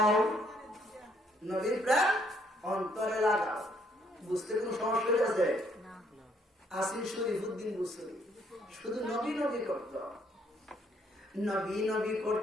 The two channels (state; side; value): normal; both; correlation 0.68